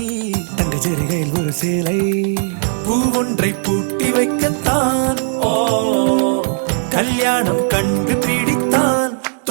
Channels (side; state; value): left; silent; 59 dB below the other